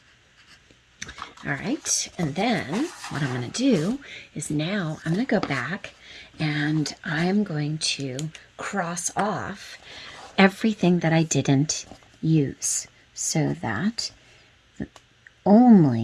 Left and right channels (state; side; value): identical; both; correlation 1.00